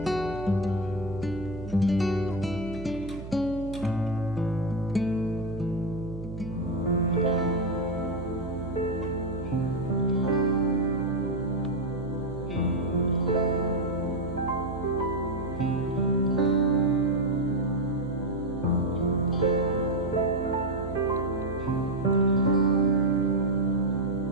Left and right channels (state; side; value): noise; right; hum, 11 dB below the sound